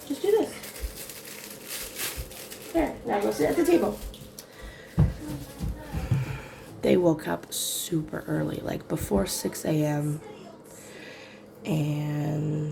Just do this. There, now go sit at the table. They woke up super early, like before 6 a.m.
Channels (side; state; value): both; identical; correlation 1.00